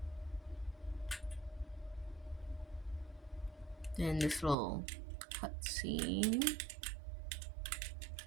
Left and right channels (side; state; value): left; drops out; at 4.5 s